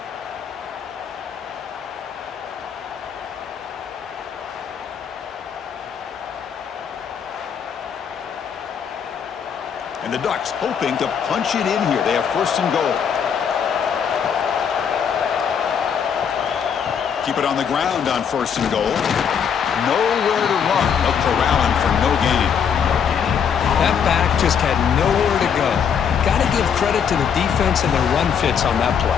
And the Ducks hoping to punch it in here. They have first and goal. Keep it on the ground on first and goal. Nowhere to run. They'll corral him for no gain. That back just had nowhere to go. Got to give credit to the defense and their run fits on that play.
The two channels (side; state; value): right; quieter; 7.5 dB